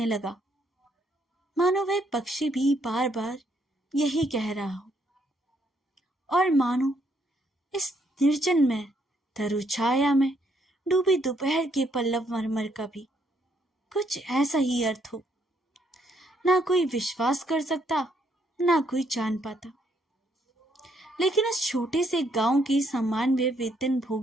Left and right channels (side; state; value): both; normal; correlation 0.72